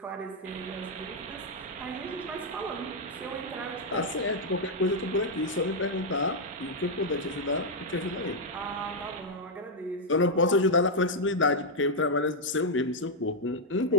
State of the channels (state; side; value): normal; both; correlation -0.02